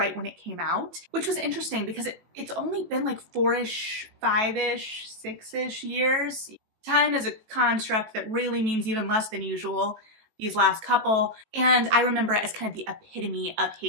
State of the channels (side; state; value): left; late; 18 ms